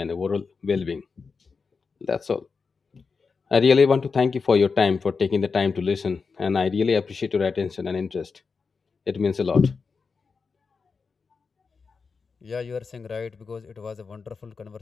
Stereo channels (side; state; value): right; quieter; 5.0 dB